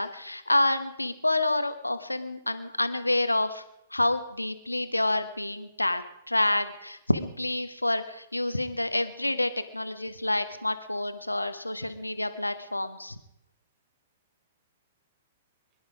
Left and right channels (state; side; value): inverted; both; correlation -0.96